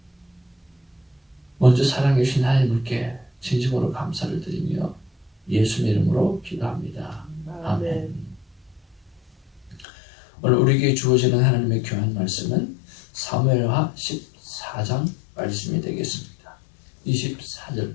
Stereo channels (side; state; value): right; drops out; at 9.9 s